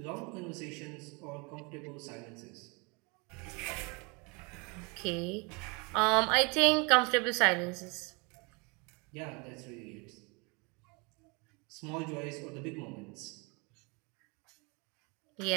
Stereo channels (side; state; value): left; quieter; 29.9 dB